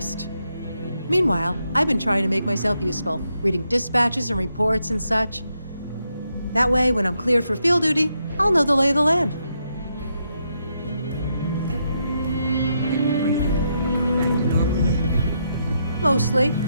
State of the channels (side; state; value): both; inverted; correlation -0.80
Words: Meanwhile, I've been trying to make myself useful, reading dispatches and reports and such. That way, when I'm cleared for field duty, I'll know the lay of the land. Mostly.